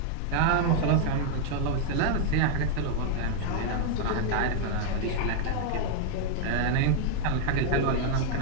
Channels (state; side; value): different; both; correlation 0.00